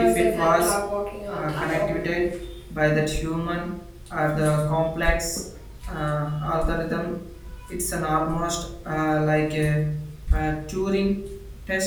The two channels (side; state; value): both; identical; correlation 1.00